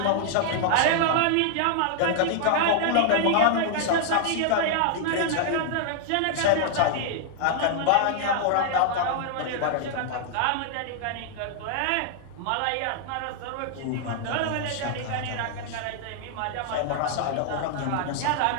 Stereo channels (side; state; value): both; different; correlation -0.01